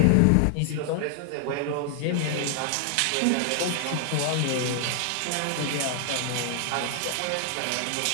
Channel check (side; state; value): both; different; correlation 0.00